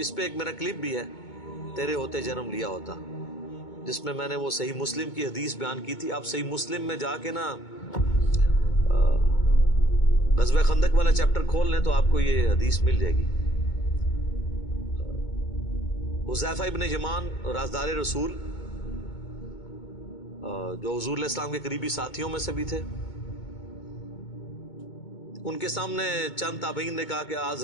پہ ایک میرا کلپ بھی ہے تیرے ہوتے جنم لیا ہوتا, جس میں نے وہ صحیح مسلم کی حدیث بیان کی تھی. آپ صحیح مسلم میں جا کے نا غزوہ خندق والا چیپٹر کھول لیں تو آپ کو یہ حدیث مل جائے گی. حذیفہ ابن یمان رازدار رسول, جو حضور علیہ السلام کے قریبی ساتھیوں میں سے بھی تھے, ان کے سامنے چند تابعین نے کہا کہ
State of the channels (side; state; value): right; late; 2.2 ms